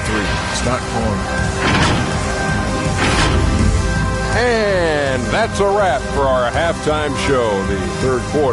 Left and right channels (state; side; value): identical; both; correlation 1.00